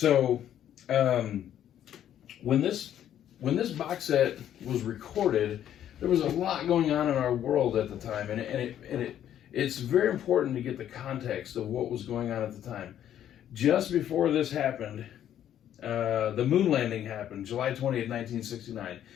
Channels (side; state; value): right; quieter; 10.7 dB